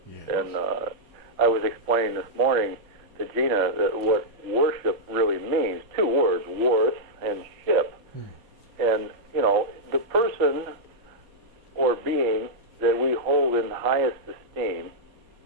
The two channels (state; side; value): late; left; 4.5 ms